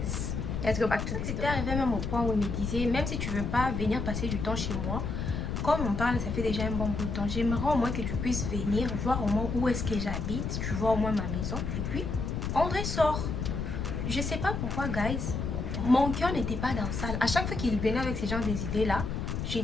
let's go back to this. C'était arrivé même au point où il me disait, même si tu veux pas venir passer du temps chez moi, comme on parle, ça fait déjà un bon bout de temps, j'aimerais au moins que tu puisses venir voir au moins où est-ce que j'habite, tu vois au moins ma maison, et puis on ressort. Je sais pas pourquoi, guys, mon cœur n'était pas dans ça. À chaque fois qu'il venait avec ces genres des idées là,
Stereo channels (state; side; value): noise; left; rumble, 3 dB below the sound